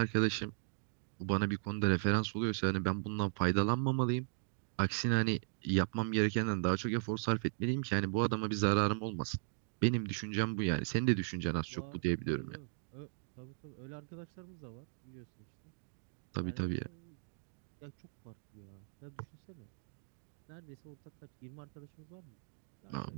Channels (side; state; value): left; silent; digital silence